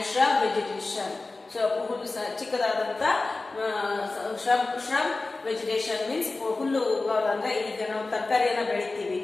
shrub vegetation. So ಹುಲ್ಲು ಚಿಕ್ಕದಾದಂತ shrub vegetation means ಹುಲ್ಲು ಅಂದ್ರೆ ಈಗ ನಾವು ತರಕಾರಿಯನ್ನ ಬೆಳಿತೀವಿ.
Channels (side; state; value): right; quieter; 3.4 dB